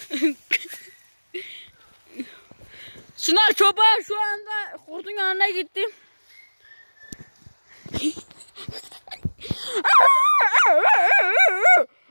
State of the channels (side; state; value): both; inverted; correlation -1.00